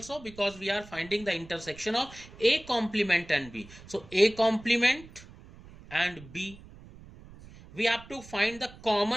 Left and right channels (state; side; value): noise; right; rumble, 19 dB below the sound